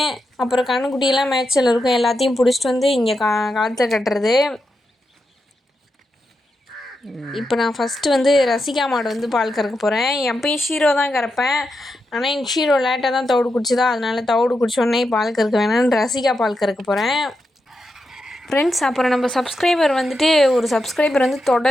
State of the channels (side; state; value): both; normal; correlation 0.86